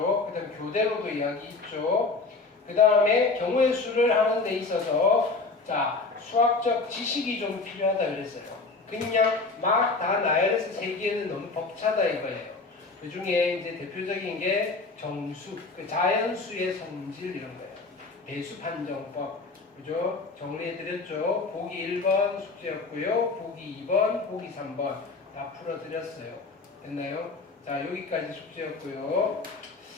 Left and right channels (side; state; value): right; quieter; 3.9 dB